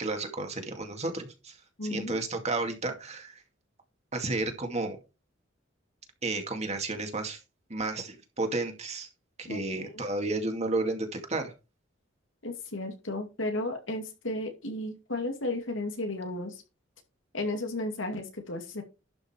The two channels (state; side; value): normal; both; correlation 0.30